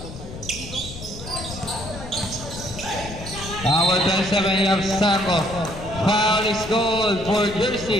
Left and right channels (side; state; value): left; noise; rumble, 12 dB below the sound